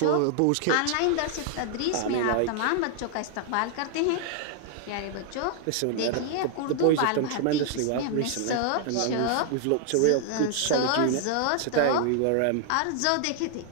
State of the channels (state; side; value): different; both; correlation 0.00